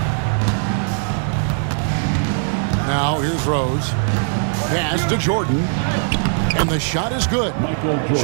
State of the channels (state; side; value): silent; left; 58 dB below the other